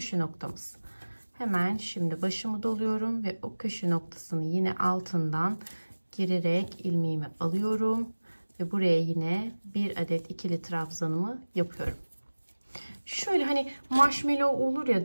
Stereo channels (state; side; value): inverted; both; correlation -1.00